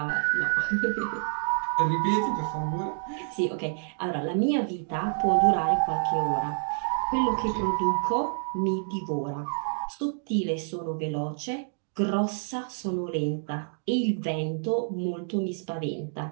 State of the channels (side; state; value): left; silent; digital silence